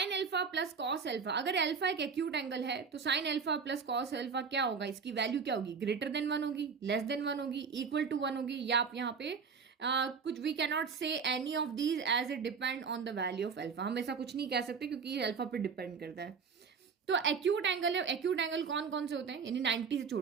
alpha plus cos alpha. अगर अल्फा एक एक्यूट एंगल है तो sine alpha plus cos alpha क्या होगा, इसकी वैल्यू क्या होगी, ग्रेटर देन 1 होगी, लेस देन 1 होगी, इक्वल टू 1 होगी, या आप यहाँ पे कुछ we can not say any of these as it depend on the value of alpha. हम ऐसा कुछ नहीं कह सकते क्योंकि ये अल्फा पे डिपेंड करता है. तो एक्यूट एंगल है, एक्यूट एंगल कौन कौन से होते हैं, यानी 90 से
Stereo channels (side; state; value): left; quieter; 5.8 dB